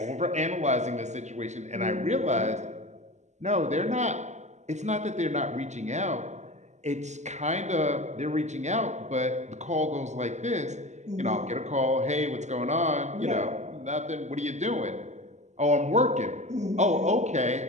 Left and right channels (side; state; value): left; late; 0.34 ms